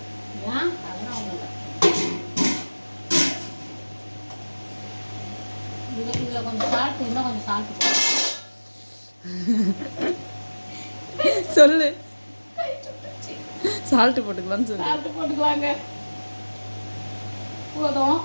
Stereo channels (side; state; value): both; inverted; correlation -1.00